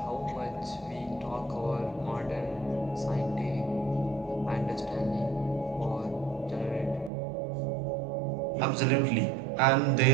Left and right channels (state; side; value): drops out; left; at 7.1 s